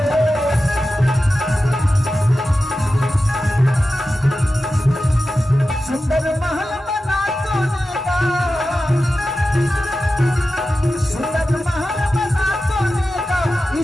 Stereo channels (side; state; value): both; normal; correlation 0.93